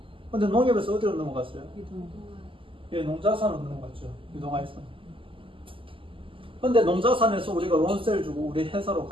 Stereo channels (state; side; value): late; left; 0.25 ms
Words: 근데 농협에서 어디로 넘어갔어요? 예, 농자산으로 넘어갔죠. 유동화에서. 근데 농자산에서 우리가 론세를 주고 우리 회사로